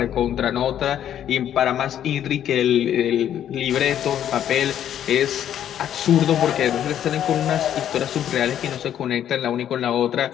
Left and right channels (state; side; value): quieter; right; 10.4 dB